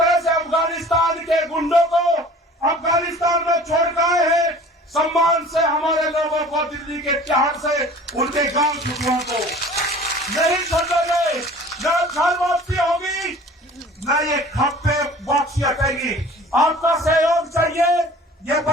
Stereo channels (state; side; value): normal; both; correlation 0.46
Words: से अफगानिस्तान के गुंडों को अफगानिस्तान में छोड़ कर आए हैं, सम्मान से हमारे लोगों को दिल्ली के तिहाड़ से उनके गांव छुटुओं को नहीं छोड़ेंगे। न घर वापसी होगी, न ये खप्पे वापसी हटेगी। आपका सहयोग चाहिए। ये